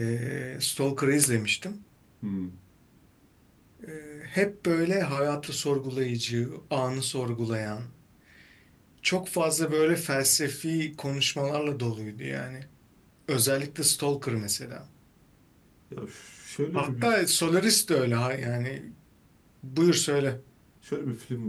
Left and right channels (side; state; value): both; identical; correlation 1.00